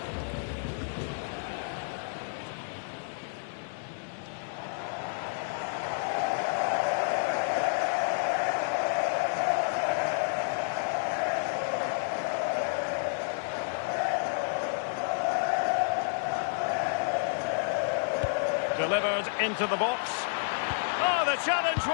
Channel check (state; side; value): silent; right; digital silence